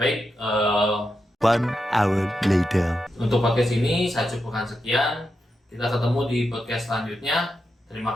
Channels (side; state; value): both; normal; correlation 0.87